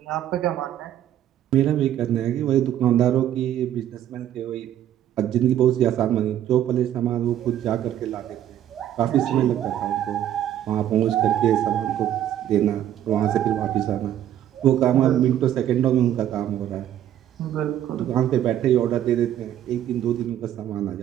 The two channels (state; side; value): quieter; left; 11.3 dB